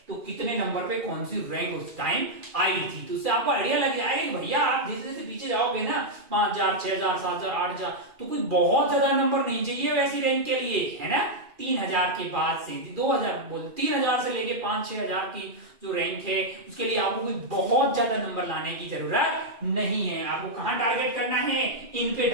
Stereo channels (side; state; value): left; late; 2.4 ms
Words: तो कितने नंबर पे कौन सी रैंक उस टाइम आई थी। तो उससे आपको आइडिया लग जाएगा कि भैया आप जैसे जैसे पीछे जाओगे ना 5000 6000 7000 8000 तो कोई बहुत ज्यादा नंबर नहीं चाहिए वैसी रैंक के लिए, है ना। 3000 के बाद से 2000 बोल 3000 से लेके 5-6000 की जो रैंक है उसके लिए आपको कोई बहुत ज्यादा नंबर लाने की जरूरत नहीं है। आपको कहां टारगेट करना है, इन पे